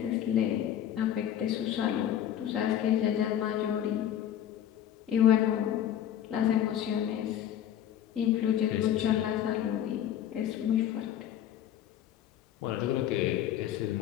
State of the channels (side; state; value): right; quieter; 10.7 dB